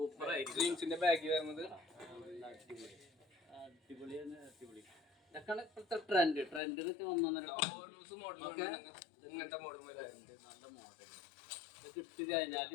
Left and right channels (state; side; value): drops out; right; at 6.6 s